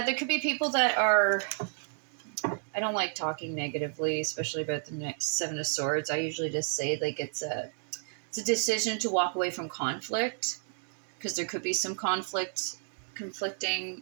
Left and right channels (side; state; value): left; silent; digital silence